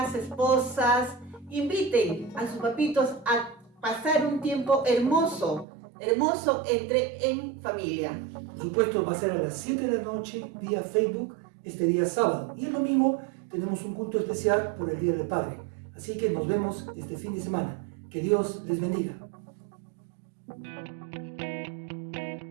esposas, inviten a sus papitos a pasar un tiempo hermoso en familia. Por supuesto, va a ser a las 7 de la noche vía Facebook este día sábado. Y el domingo tenemos un culto especial por el Día del Padre. Así que nos vemos este fin de semana. Que Dios les bendiga.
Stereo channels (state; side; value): drops out; left; at 5.7 s